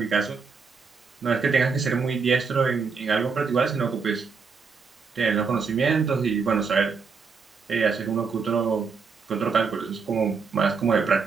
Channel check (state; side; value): quieter; left; 5.2 dB